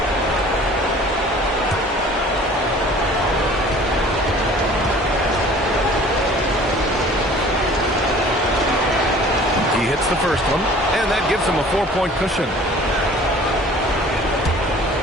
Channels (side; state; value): both; normal; correlation 0.48